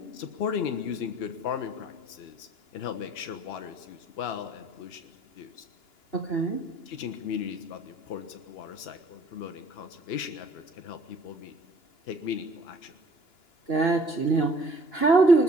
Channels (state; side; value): late; right; 2.9 ms